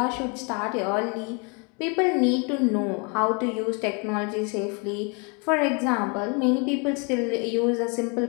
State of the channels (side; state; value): right; quieter; 33.8 dB